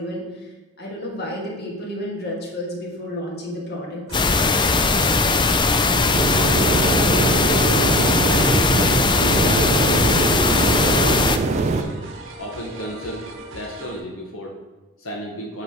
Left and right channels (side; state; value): both; normal; correlation 0.34